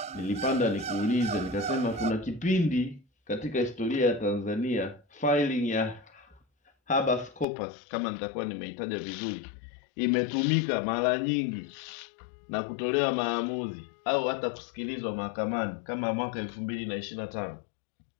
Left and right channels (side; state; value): right; drops out; at 7.5 s